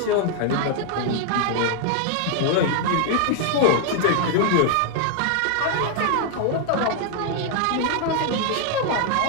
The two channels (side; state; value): both; different; correlation 0.00